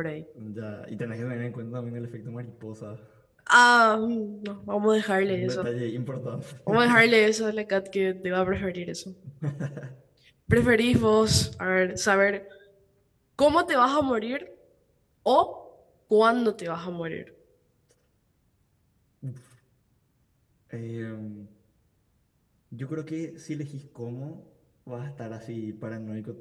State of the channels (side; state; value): both; identical; correlation 1.00